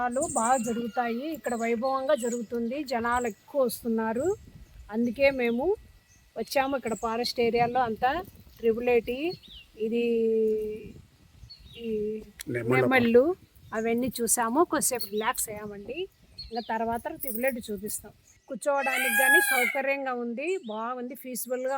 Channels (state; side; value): identical; both; correlation 1.00